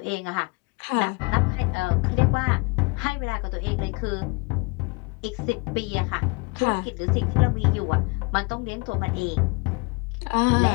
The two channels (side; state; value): right; quieter; 29.0 dB